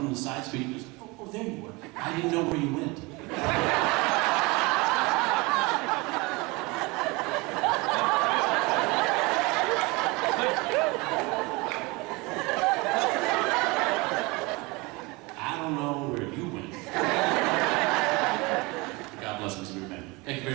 the side street and goes, oh, there you were. I didn't know where you went. I don't know where you went. God bless Mr. Goodman. Thank you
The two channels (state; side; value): quieter; left; 25.2 dB